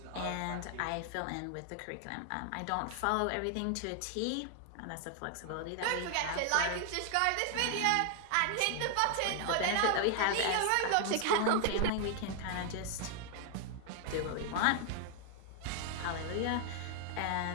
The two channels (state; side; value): different; both; correlation 0.00